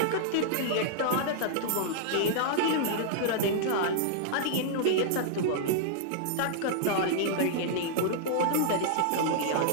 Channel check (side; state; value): both; different; correlation -0.01